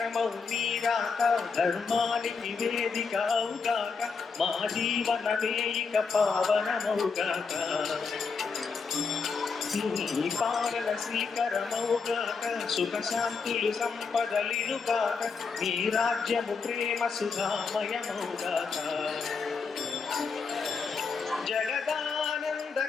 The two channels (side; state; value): right; quieter; 5.1 dB